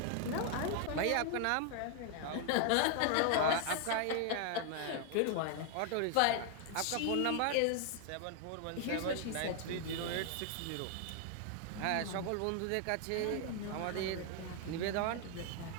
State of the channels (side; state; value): both; different; correlation 0.00